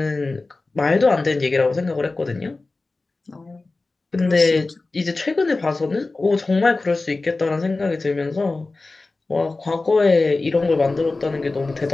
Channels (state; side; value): quieter; right; 3.4 dB